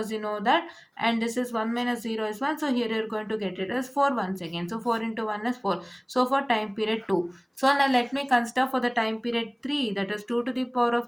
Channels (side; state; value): both; identical; correlation 1.00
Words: you know that, and this is 1 minus 0 is 1. So here you're going to get it as 4 once again. So 4 into 1 is 4. So for time period 2. So now let me consider for the time period 3, that is 2 to the power